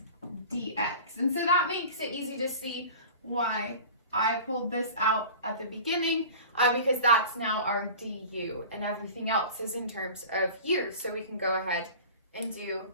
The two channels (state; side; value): inverted; both; correlation -0.38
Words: dx. And so that makes it easy to see why I pulled this out at the beginning, because that's now our du, and everything else is in terms of u. So we can go ahead and do